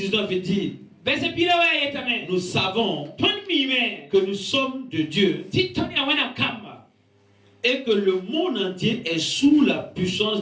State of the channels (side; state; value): both; identical; correlation 1.00